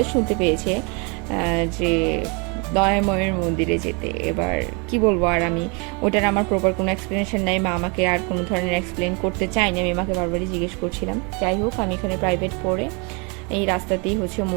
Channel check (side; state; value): left; quieter; 32.3 dB